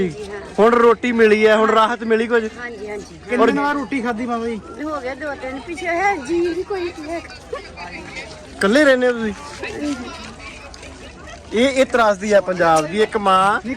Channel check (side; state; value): both; identical; correlation 1.00